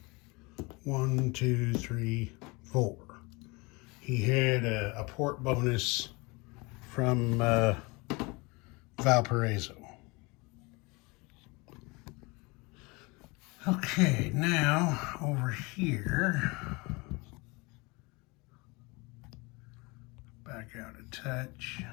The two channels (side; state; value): right; quieter; 26.4 dB